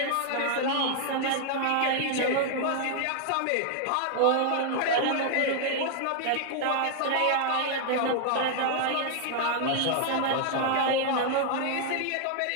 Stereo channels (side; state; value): both; different; correlation 0.00